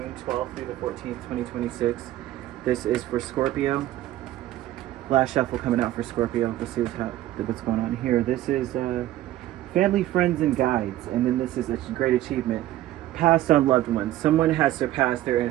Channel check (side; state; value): left; quieter; 14.6 dB